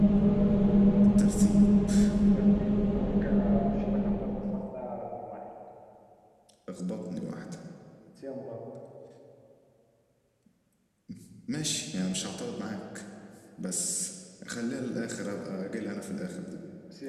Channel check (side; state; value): both; identical; correlation 1.00